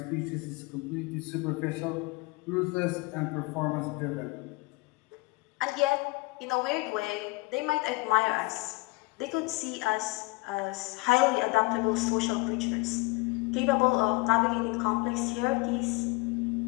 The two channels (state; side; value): quieter; right; 24.5 dB